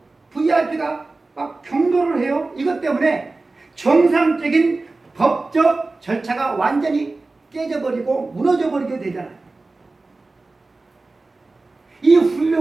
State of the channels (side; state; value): left; quieter; 3.4 dB